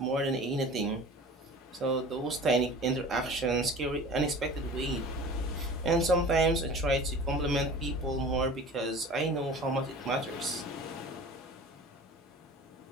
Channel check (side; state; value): both; normal; correlation 0.40